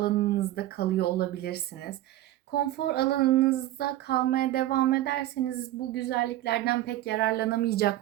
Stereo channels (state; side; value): quieter; left; 14.7 dB